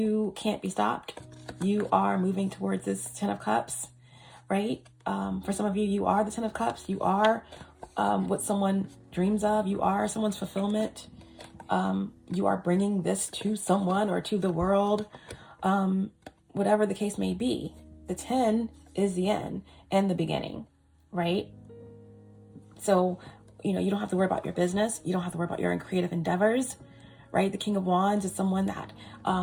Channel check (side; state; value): both; identical; correlation 1.00